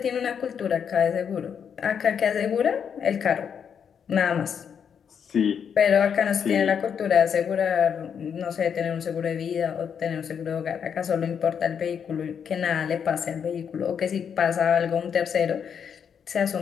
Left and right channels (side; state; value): right; quieter; 7.5 dB